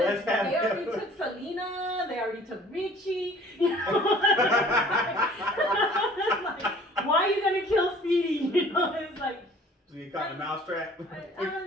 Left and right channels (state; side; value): normal; both; correlation 0.51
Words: they already took Selena, they already took Richie. You know? Like, why are you gonna kill Speedy? You know, it's like. So you caught the mousetrap. I